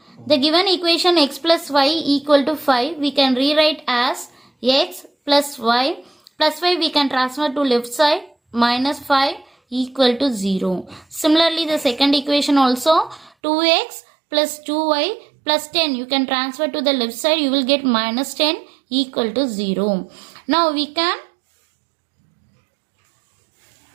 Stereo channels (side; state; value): left; drops out; at 13.3 s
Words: The given equation x plus y equal to 5 we can rewrite as x plus y. Plus 5 we can transfer to left side, minus 5 equal to 0. Similarly the second equation also 2x plus 2y plus 10 you can transfer to the left side, you will get minus 10 equal to 0. Now we can